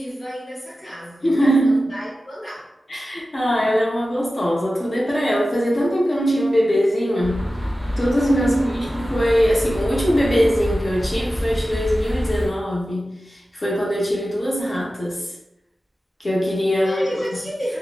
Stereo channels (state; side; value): normal; both; correlation 0.94